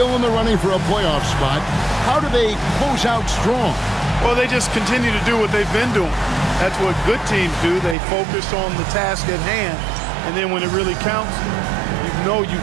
in the running for a playoff spot, how do they close out strong? Well, they just continue to do what they've been doing. That's what good teams do. They focus on the task at hand. And then when it really counts, you know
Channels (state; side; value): drops out; left; at 8.0 s